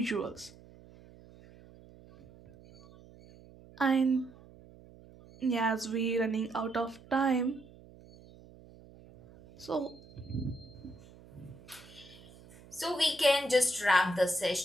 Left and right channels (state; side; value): noise; right; hum, 22 dB below the sound